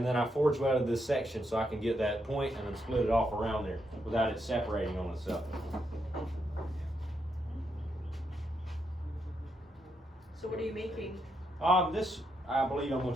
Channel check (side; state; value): both; normal; correlation 0.81